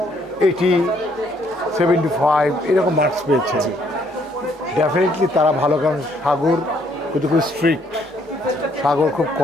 80, 75 এরকম মার্কস পেয়েছে। ডেফিনেটলি তারা ভালো, কারণ সাগর কিন্তু খুব স্ট্রিক্ট, সাগর খুব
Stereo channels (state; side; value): normal; both; correlation 0.68